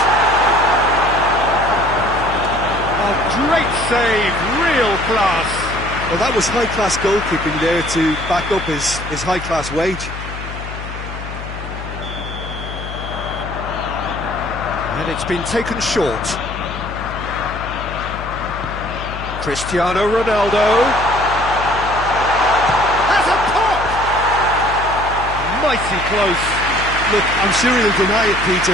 A great save, real class. Well, that was high-class goalkeeping there to back up his high-class wage. And it's been taken short. Cristiano Ronaldo has a pop! Mighty close. Look, I'm sure he'll deny it,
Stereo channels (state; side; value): noise; left; hum, 9 dB below the sound